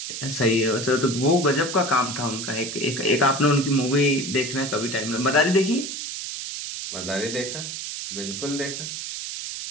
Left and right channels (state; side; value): noise; right; hiss, 6 dB below the sound